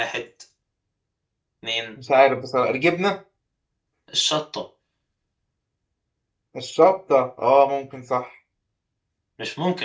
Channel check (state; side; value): identical; both; correlation 1.00